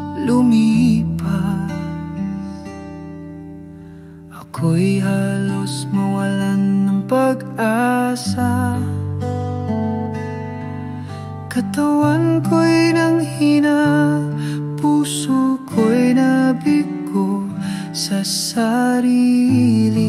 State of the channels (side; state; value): both; identical; correlation 1.00